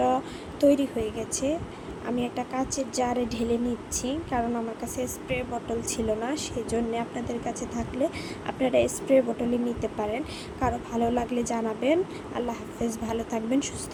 তৈরি হয়ে গেছে। আমি একটা কাচের জারে ঢেলে নিচ্ছি, কারণ আমার কাছে স্প্রে বোতল ছিল না। সেজন্য আপনাদের কাছে থাকলে আপনারা স্প্রে বোতলে নিতে পারেন। কারো ভালো লাগলে জানাবেন। আল্লাহ হাফেজ, ভালো থাকবেন, সুস্থ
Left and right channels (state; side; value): identical; both; correlation 1.00